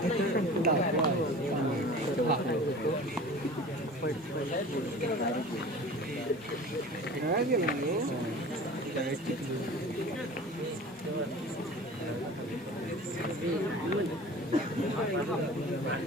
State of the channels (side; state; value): both; normal; correlation 0.40